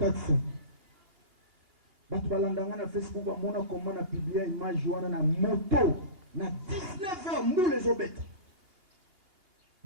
Na Facebook, comment on a publié une image na moto, na 19h, nous les obètes.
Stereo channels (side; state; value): left; late; 2.8 ms